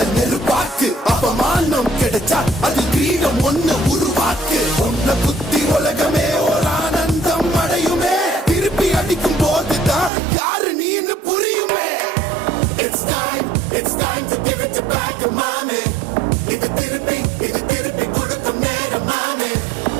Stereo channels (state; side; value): drops out; left; at 10.1 s